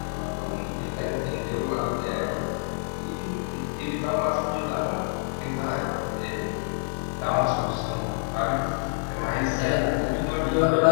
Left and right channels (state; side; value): silent; right; 56 dB below the other